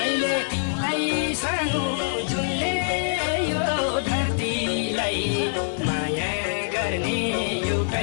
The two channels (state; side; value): silent; right; digital silence